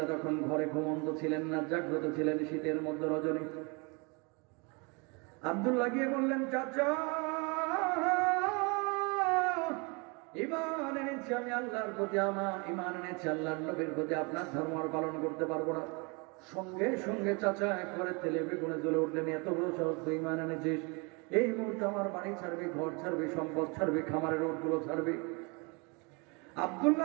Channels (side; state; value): left; quieter; 30.9 dB